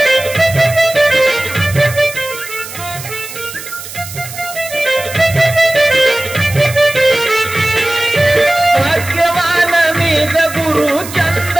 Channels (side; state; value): right; noise; hiss, 12 dB below the sound